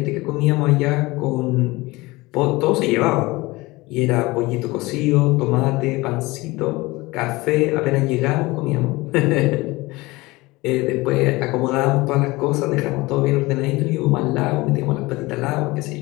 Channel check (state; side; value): quieter; right; 21.7 dB